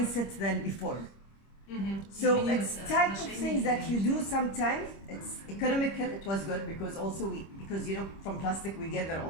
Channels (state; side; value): late; right; 25 ms